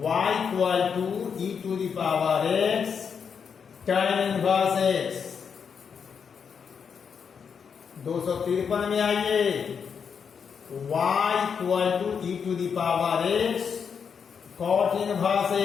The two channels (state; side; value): quieter; right; 6.6 dB